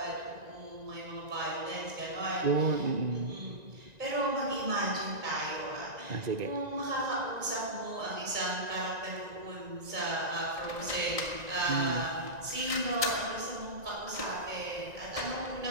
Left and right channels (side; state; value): left; late; 1.9 ms